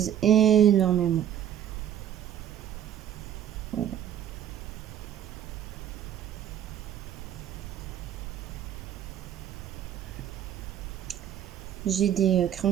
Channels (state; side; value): quieter; left; 10.5 dB